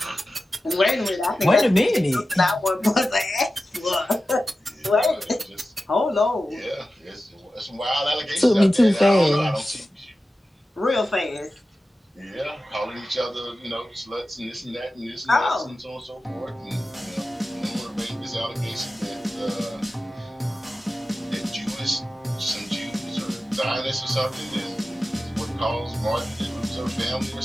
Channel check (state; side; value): normal; both; correlation 0.93